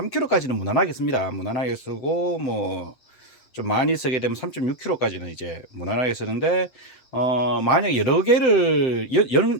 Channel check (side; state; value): right; late; 7.8 ms